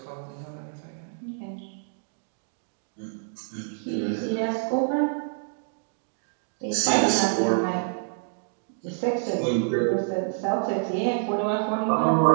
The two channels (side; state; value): left; silent; digital silence